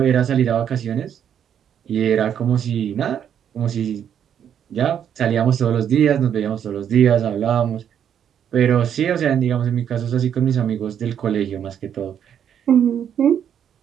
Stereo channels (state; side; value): quieter; left; 9.0 dB